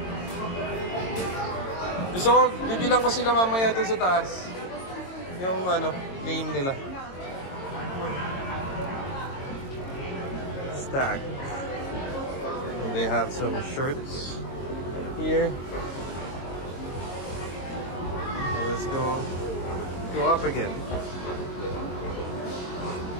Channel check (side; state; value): right; late; 22 ms